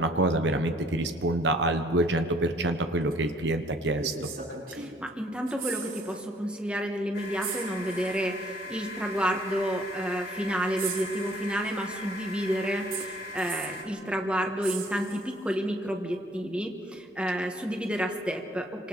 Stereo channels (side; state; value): both; normal; correlation 0.60